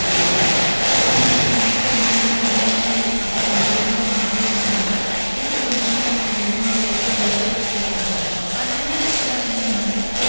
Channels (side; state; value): both; inverted; correlation -1.00